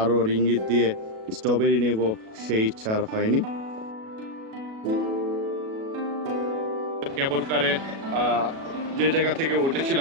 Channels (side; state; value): left; late; 37 ms